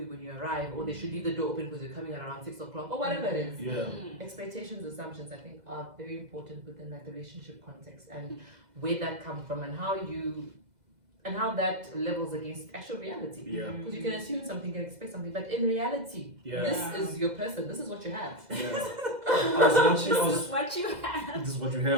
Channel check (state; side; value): late; left; 2.0 ms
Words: you when you arrive, or they should leave the door open because you're coming at around 6 o'clock, or whatever it is. Expectations, assumptions, I think are very important within that relationship context, and where that comes from, and how that levels against actual reality. Because you can assume something, you can expect something, but in reality, this is your person, this is what you have. This is what you have. This is what you